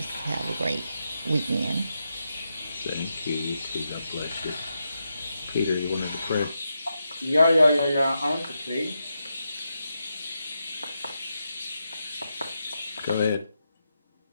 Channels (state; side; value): inverted; both; correlation -0.86